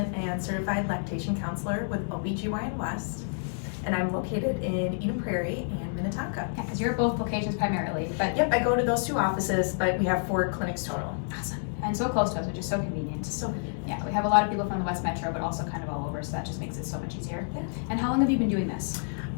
and certified lactation counselor with OBGYN West, and I'm located in Eden Prairie and Minnetonka. Yeah, because you're at both locations primarily, but Yep, I go to those two offices, but we have 4 clinics total. awesome. And so close to us, which is so convenient. So convenient. Yeah, we have a lot of people from the West Metro, but also kind of all over, so that just makes it so much easier. Yeah. And how long have you been doing this?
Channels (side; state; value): right; silent; digital silence